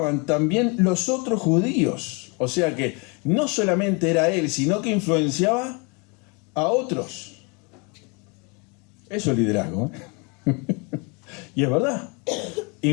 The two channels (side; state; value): right; quieter; 31.3 dB